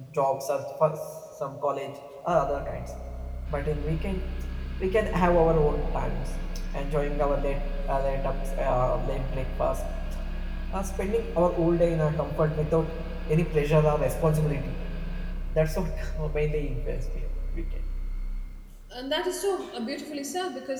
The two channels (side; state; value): both; identical; correlation 1.00